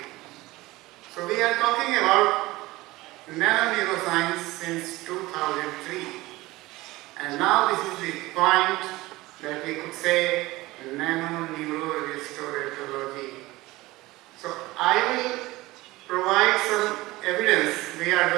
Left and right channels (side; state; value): left; quieter; 19.4 dB